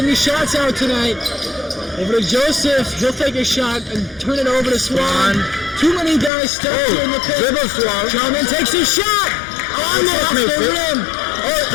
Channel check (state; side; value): drops out; right; at 6.3 s